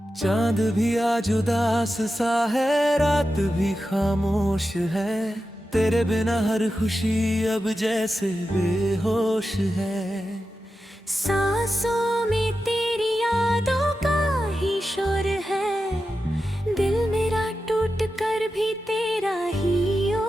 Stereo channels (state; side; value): normal; both; correlation 0.91